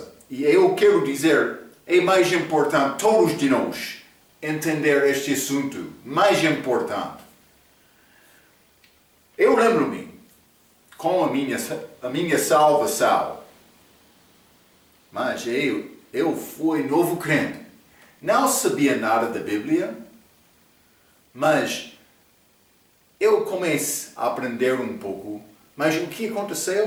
e eu quero dizer, é mais importante todos de nós entender este assunto, mais importante. Eu lembro-me, com a minha salvação, mas eu fui novo crente, não sabia nada da Bíblia, mas eu comecei a aprender um pouco. Mas o que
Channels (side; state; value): both; identical; correlation 1.00